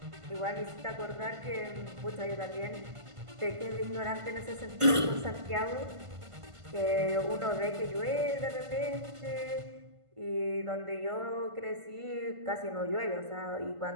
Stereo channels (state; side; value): late; left; 1.5 ms